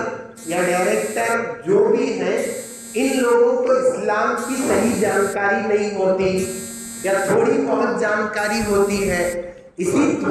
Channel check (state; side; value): identical; both; correlation 1.00